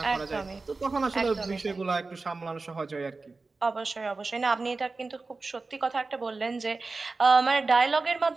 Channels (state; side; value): quieter; left; 3.8 dB